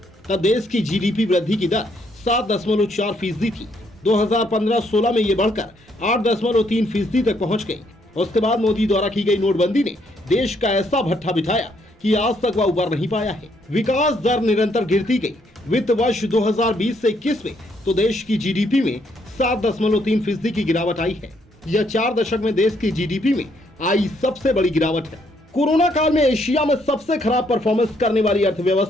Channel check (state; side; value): normal; both; correlation 0.71